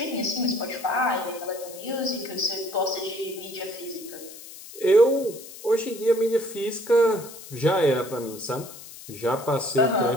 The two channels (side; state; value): left; noise; hiss, 15 dB below the sound